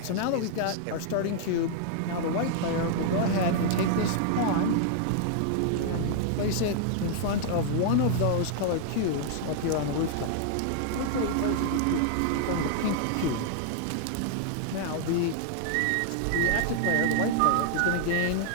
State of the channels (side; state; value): both; different; correlation -0.01